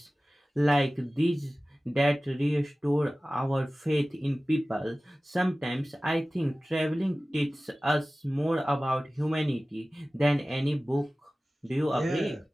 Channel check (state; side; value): normal; both; correlation 0.97